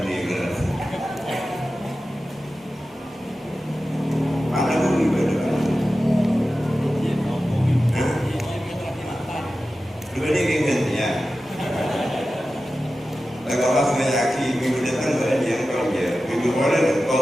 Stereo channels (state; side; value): normal; both; correlation 0.94